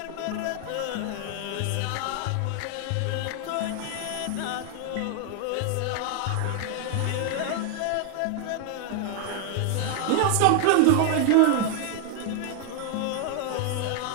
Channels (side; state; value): both; different; correlation 0.00